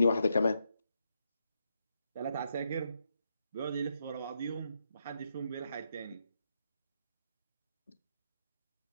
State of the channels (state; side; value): inverted; both; correlation -0.80